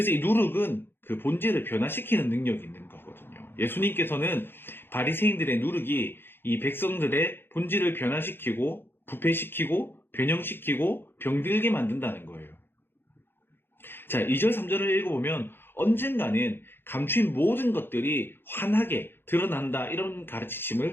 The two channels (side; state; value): right; late; 0.10 ms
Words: 이 누룩은 그 본질을 변화시키는 능력이 있는 거거든요. 예수님께서는 바리새인들의 누룩이 이 백성들의 본질을 변화시키고 부패시키고 변형시키고 병들게 만든다는 거예요. 자, 2절 3절을 읽어보면 언젠가는 감추인 모든 것들이 환하게 드러난다, 이런